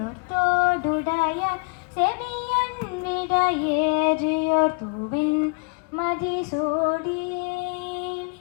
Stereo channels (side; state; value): right; quieter; 33.9 dB